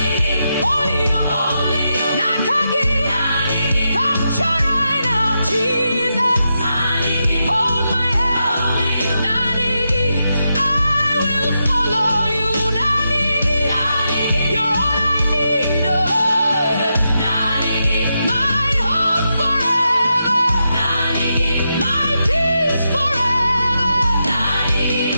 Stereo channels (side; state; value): both; inverted; correlation -0.86